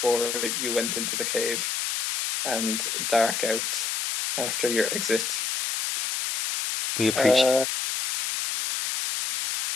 you went into the cave and dark out after your exit. we appreciate. Uh,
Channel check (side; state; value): left; noise; hiss, 1 dB below the sound